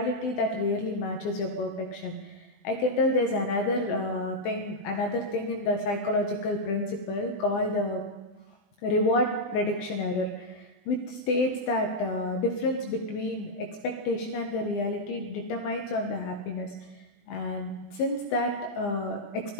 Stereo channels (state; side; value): late; right; 20 ms